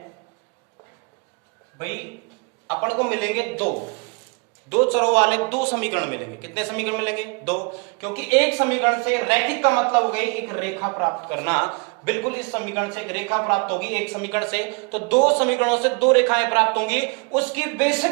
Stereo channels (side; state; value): left; quieter; 34.7 dB